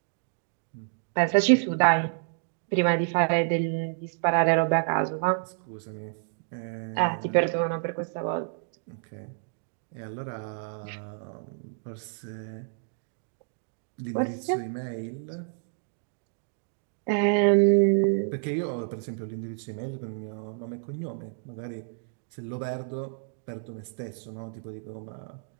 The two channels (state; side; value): silent; left; digital silence